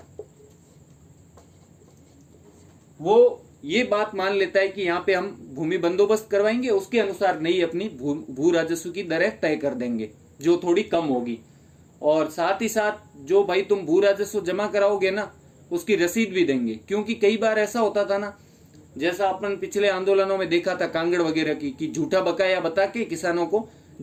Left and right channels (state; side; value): identical; both; correlation 1.00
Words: वो ये बात मान लेता है कि यहाँ पे हम भूमि बंदोबस्त करवाएंगे, उसके अनुसार नई अपनी भू राजस्व की दरें तय कर देंगे जो थोड़ी कम होगी, और साथ ही साथ जो भाई तुम भू राजस्व जमा कराओगे ना उसकी रसीद भी देंगे। क्योंकि कई बार ऐसा होता था ना, जैसा अपन पिछले आंदोलनों में देखा था कांगड़ वगैरह की, कि झूठा बकाया बता के किसानों को